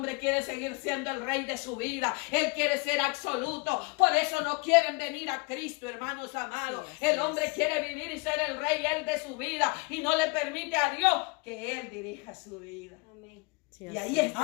quiere seguir siendo el rey de su vida, él quiere ser absoluto. Por eso no quieren venir a Cristo, hermanos amados. Sí, El hombre quiere vivir y ser el rey, él de su vida, y no le permite a Dios que él dirija su vida. Amén. Sí, Y así ahí es. está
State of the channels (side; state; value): right; quieter; 30.1 dB